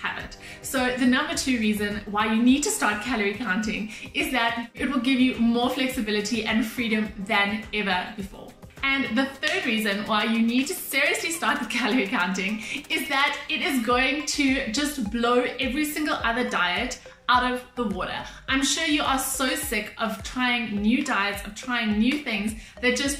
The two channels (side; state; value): both; identical; correlation 1.00